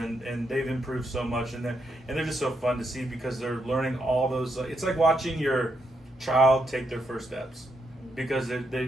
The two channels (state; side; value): normal; both; correlation 0.79